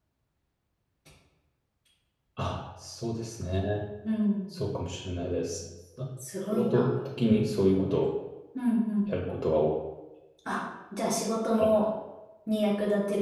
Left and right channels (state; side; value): identical; both; correlation 1.00